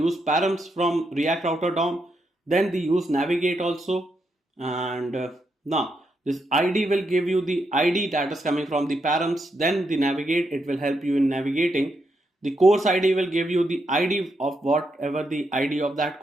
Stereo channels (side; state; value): both; normal; correlation 0.81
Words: params from React Router DOM, then the use navigate also, and now this ID will give you the ID that is coming from the params, then the navigate, it will help you in navigating. The course ID will give you the ID of whatever the ID of that